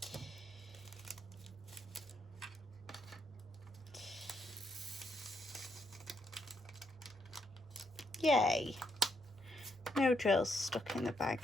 Yay. No drills stuck in the bag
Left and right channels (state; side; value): normal; both; correlation 0.77